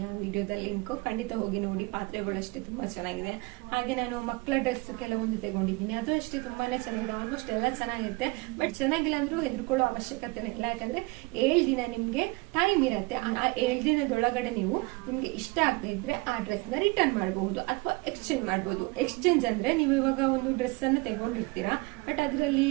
ಆ ವಿಡಿಯೋದ ಲಿಂಕ್, ಖಂಡಿತ ಹೋಗಿ ನೋಡಿ. ಪಾತ್ರೆಗಳು ಅಷ್ಟೇ ತುಂಬಾ ಚೆನ್ನಾಗಿದೆ. ಹಾಗೆ ನಾನು ಮಕ್ಕಳ ಡ್ರೆಸ್ ಕೆಲವೊಂದು ತಗೊಂಡಿದ್ದೀನಿ, ಅದು ಅಷ್ಟೇ ತುಂಬಾನೇ ಚೆನ್ನಾಗಿದೆ. ಆಲ್ಮೋಸ್ಟ್ ಎಲ್ಲ ಚೆನ್ನಾಗಿರುತ್ತೆ, ಬಟ್ ಚೆನ್ನಾಗಿಲ್ಲ ಅಂದ್ರೂ ಹೆದರ್ಕೊಳ್ಳೋ ಅವಶ್ಯಕತೆ ಇಲ್ಲ. ಯಾಕಂದ್ರೆ 7 ದಿನ ನಿಮ್ಗೆ ಟೈಮ್ ಇರುತ್ತೆ. ಆ 7 ದಿನದೊಳಗಡೆ ನೀವು ನಿಮ್ಗೆ ಇಷ್ಟ ಆಗದೆ ಇದ್ರೆ ಆ ಡ್ರೆಸ್ ನ ರಿಟರ್ನ್ ಮಾಡಬಹುದು ಅಥವಾ ಎಕ್ಸ್ಚೇಂಜ್ ಮಾಡಬಹುದು. ಎಕ್ಸ್ಚೇಂಜ್ ಅಂದ್ರೆ ನೀವು ಇವಾಗ ಒಂದು ಡ್ರೆಸ್ ಅನ್ನು ತಗೊಂಡಿರ್ತೀರಾ, ಬಟ್ ಅದರಲ್ಲಿ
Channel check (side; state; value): left; quieter; 25.7 dB